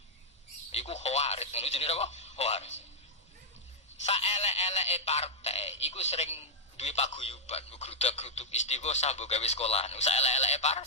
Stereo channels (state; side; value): normal; both; correlation -0.06